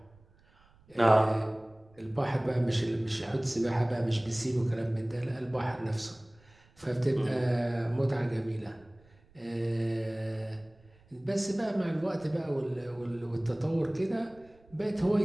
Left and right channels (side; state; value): right; noise; rumble, 29 dB below the sound